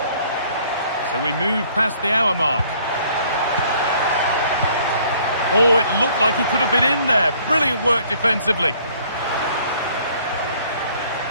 So we move past the hour mark. Oh, it looked like he could have been in there. Brilliant work defensively.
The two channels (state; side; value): inverted; both; correlation -0.59